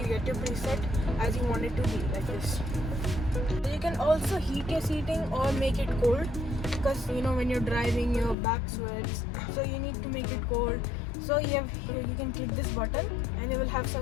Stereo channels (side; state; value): right; drops out; at 8.3 s